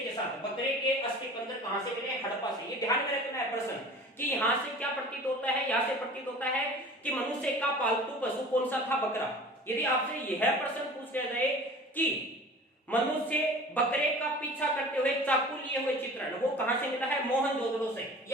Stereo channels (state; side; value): normal; both; correlation 0.42